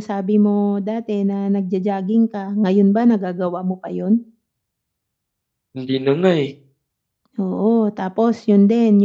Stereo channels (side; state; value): both; identical; correlation 1.00